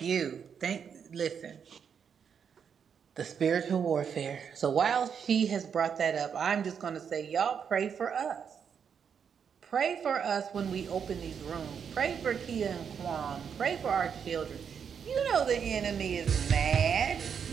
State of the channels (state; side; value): quieter; left; 7.2 dB